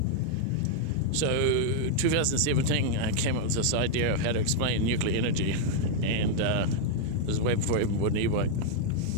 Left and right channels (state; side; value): different; both; correlation 0.00